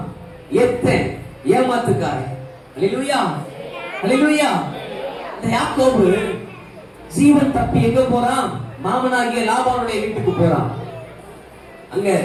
எத்தேன், ஏமாத்துக்காரன். அல்லேலூயா அல்லேலூயா. இந்த யாக்கோபு ஜீவன் தப்பி எங்க போறான்? மாமனாகிய லாபானுடைய வீட்டுக்கு போறான். அங்க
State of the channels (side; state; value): both; identical; correlation 1.00